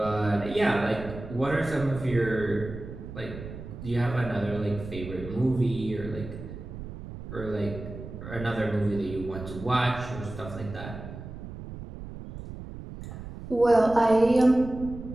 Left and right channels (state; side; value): noise; right; rumble, 11 dB below the sound